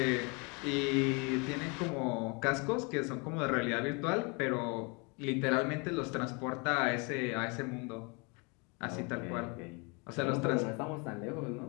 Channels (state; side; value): quieter; right; 31.1 dB